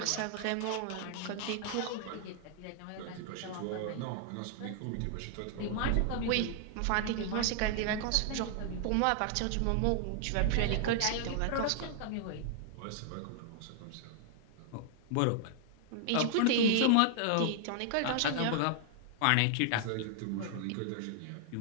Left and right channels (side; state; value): both; different; correlation -0.01